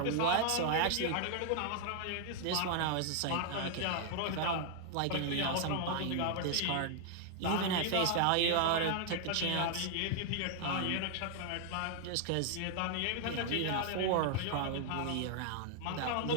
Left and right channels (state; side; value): different; both; correlation 0.00